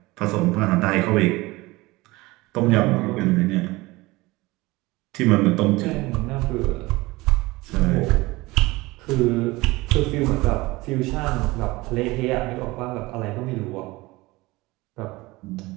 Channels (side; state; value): left; quieter; 21.2 dB